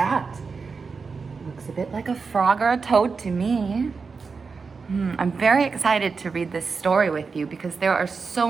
Looks a bit like a frog or a toad to me. I'm very excited to read this story with you because there are so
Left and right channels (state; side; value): quieter; left; 4.9 dB